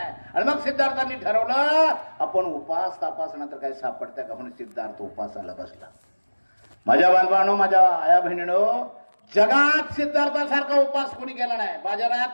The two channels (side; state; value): both; inverted; correlation -1.00